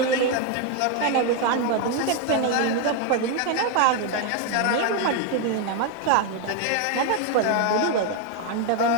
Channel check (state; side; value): different; both; correlation 0.01